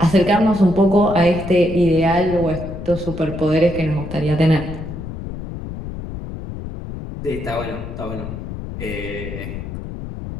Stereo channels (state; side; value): noise; left; rumble, 9 dB below the sound